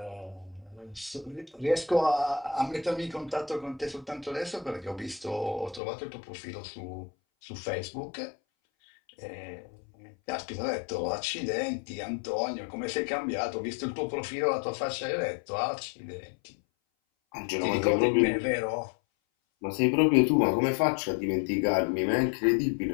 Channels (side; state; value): right; drops out; at 5.8 s